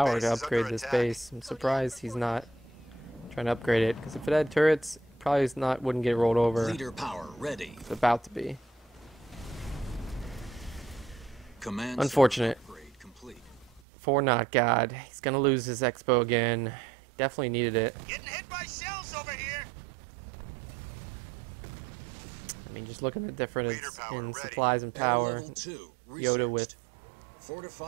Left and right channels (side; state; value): left; drops out; at 13.8 s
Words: base to is upgrade under this attack. base. I'm surprised he's not trying to upgrade it, because if it had turrets, probably wouldn't get rolled over. Leader power ready. It's about to be. Command Unfortunate. center upgrade complete. For NotGod, he's gonna lose his expo again. Definitely needed it. Getting hit by shells over here. I mean, just looking at the difference Leader power in ready. supplies and Air power. level 2 Yoda with researched.